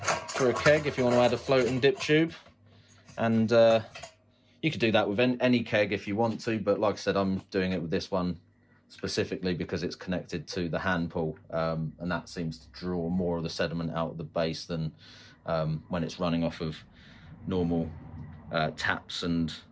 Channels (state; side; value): identical; both; correlation 1.00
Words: for a keg if you want to add a floating dip tube. And you could do that with any keg if you want to, but like I said, I'm doing it with this one specifically because it's connected to the hand pull, and that seems to draw more of the sediment out of the base than when it's running off of normal taps and